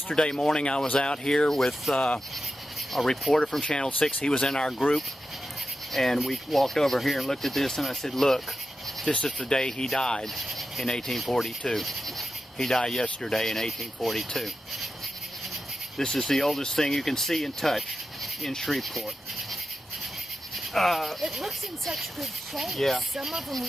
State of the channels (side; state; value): both; normal; correlation 0.91